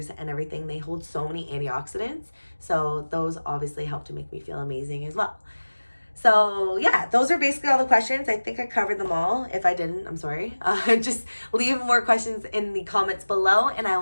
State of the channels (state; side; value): inverted; both; correlation -1.00